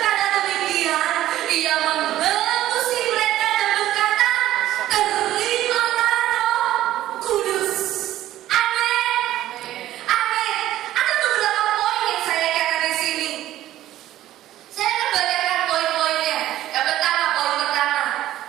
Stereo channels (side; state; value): left; quieter; 13.8 dB